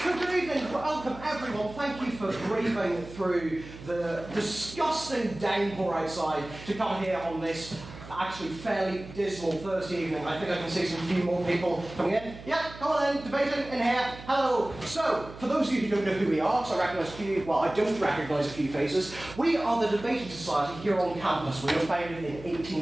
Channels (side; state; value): right; noise; hum, 15 dB below the sound